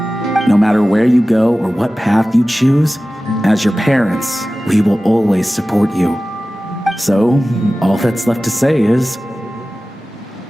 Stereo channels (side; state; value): both; normal; correlation 0.96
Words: No matter where you go or what path you choose, as your parents, we will always support you. So, all that's left to say is...